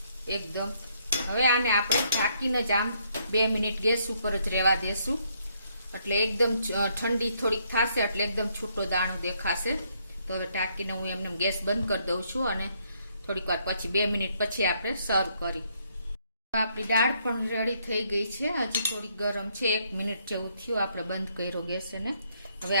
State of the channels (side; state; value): both; inverted; correlation -0.71